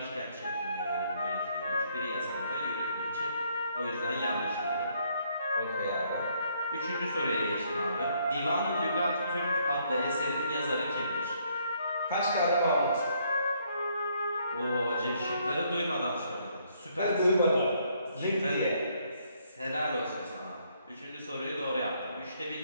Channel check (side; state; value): both; inverted; correlation -0.69